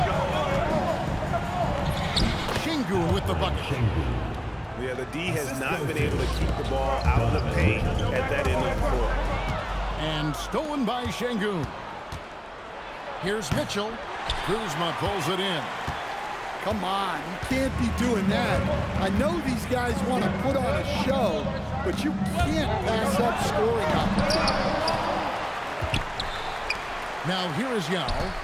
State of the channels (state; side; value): identical; both; correlation 1.00